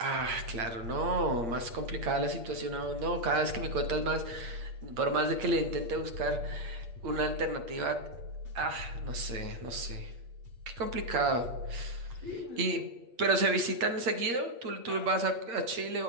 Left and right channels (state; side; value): late; left; 8.6 ms